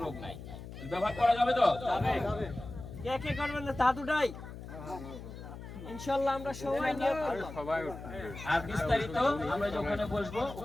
রোগ নাই। ব্যবহার করা যাবে তো? যাবে। কে কে করবেন না তা দুটাই ইনশাআল্লাহ আমরা সবাই নিয়ে আর বিস্তারিত আমরা ওখানে বসবো,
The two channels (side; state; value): left; noise; hum, 12 dB below the sound